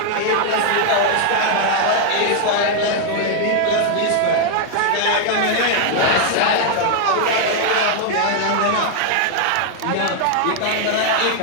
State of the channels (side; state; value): both; different; correlation 0.00